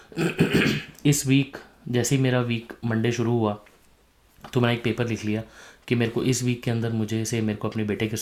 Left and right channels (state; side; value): identical; both; correlation 1.00